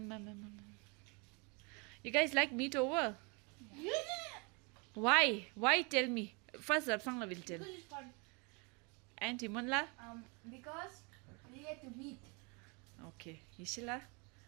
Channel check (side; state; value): left; quieter; 31.6 dB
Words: You guys like meet over? Yeah. Why? Why? Tell me. First, Rapsangla will tell. Because it's fun. And Timonla? Because we get to meet. Okay. Ishila?